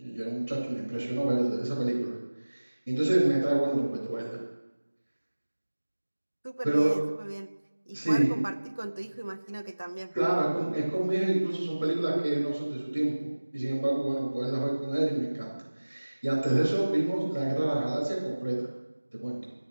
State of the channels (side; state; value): both; inverted; correlation -1.00